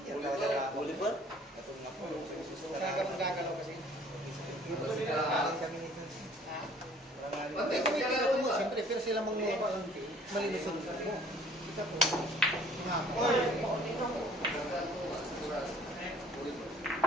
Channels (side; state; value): both; normal; correlation 0.54